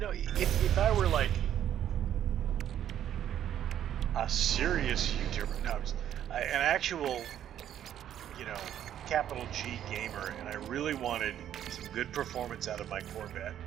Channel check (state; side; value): quieter; left; 10.6 dB